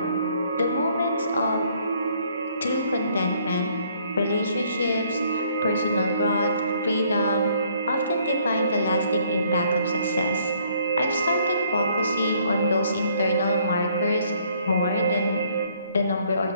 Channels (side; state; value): both; inverted; correlation -0.64